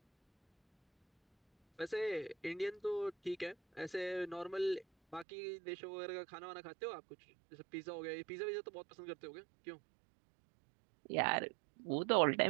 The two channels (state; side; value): drops out; left; at 5.2 s